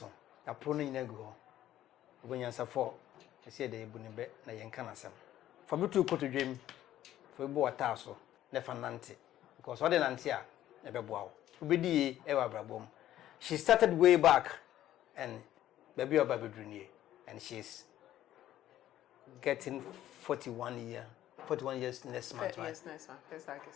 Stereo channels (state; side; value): quieter; right; 12.8 dB